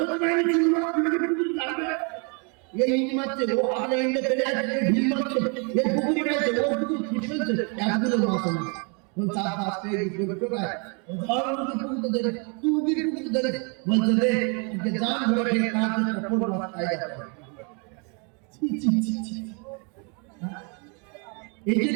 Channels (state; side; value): quieter; left; 35.5 dB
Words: পারেনি, চিংড়ি মাছ ধরবে, এই মারছে, ও আগে ইন্ডে চলে আসছে, ভিল মারছে, এই পুকুরি গেছে, ও পুকুর ফুটছে, একগুলো মাছ না। চার পাঁচটা কোথায় ধরে বলছে, রে জান ধরে খেয়ে মাছ খাই যাবে। এই